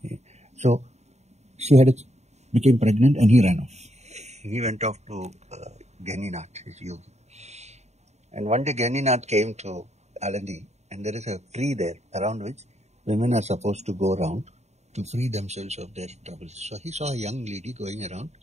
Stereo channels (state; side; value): late; left; 0.32 ms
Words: so she became pregnant and he ran off. He went off to Ganinath, his yogi. And one day Ganinath came to Alandi, and there is a tree there around which women are supposed to go around to free themselves of their troubles. So he saw a young lady going around